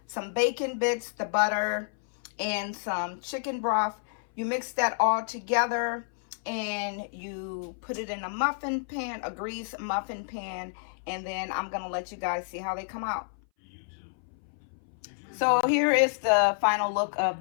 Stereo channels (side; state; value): right; silent; 58 dB below the other